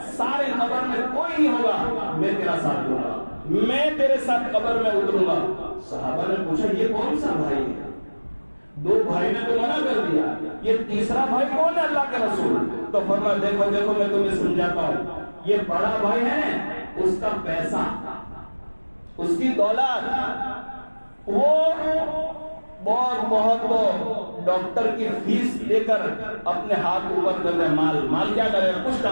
سارے قبر میں کوئی نہیں ہوگا، میں تیرا ساتھ دوں گا، میں تیرے ساتھ قبر میں اتروں گا۔ صحابہ نے پوچھا یہ کون سا بھائی ہے؟ دو بھائی نے تو منع کر دیا، یہ تیسرا بھائی کون ہے اللہ کے رسول؟ تو فرمایا دیکھو دیکھو میں تمہیں سمجھاتا ہوں، یہ بڑا بھائی ہے، اس کا پیسہ، اس کی دولت، وہ بہت ڈاکٹر کی فیس لے کر اپنے ہاتھ اوپر کر دے، مال کیا کرے گا؟ کچھ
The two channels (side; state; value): both; inverted; correlation -1.00